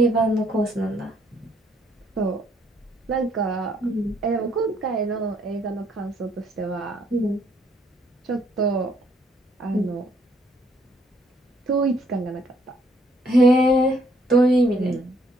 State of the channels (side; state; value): both; normal; correlation 0.68